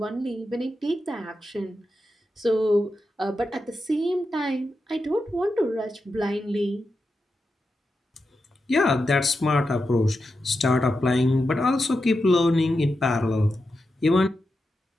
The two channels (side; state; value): both; normal; correlation 0.89